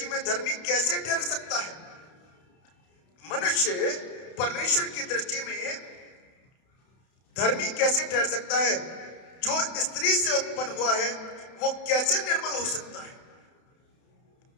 में धर्मी कैसे ठहर सकता है? मनुष्य परमेश्वर की दृष्टि में धर्मी कैसे ठहर सकता है? जो स्त्री से उत्पन्न हुआ है वो कैसे निर्मल हो सकता है?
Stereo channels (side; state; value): right; late; 31 ms